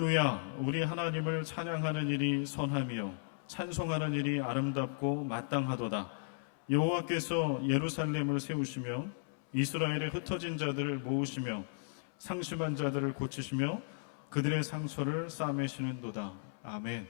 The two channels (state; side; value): silent; right; 54 dB below the other